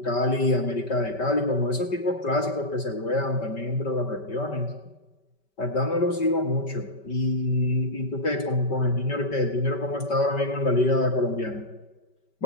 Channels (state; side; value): late; right; 5.2 ms